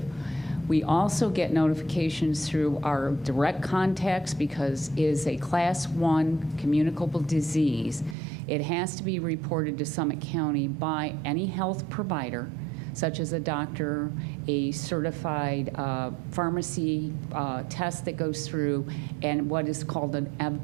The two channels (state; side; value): drops out; left; at 8.2 s